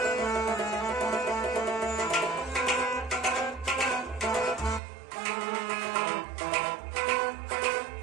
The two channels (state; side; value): drops out; left; at 4.8 s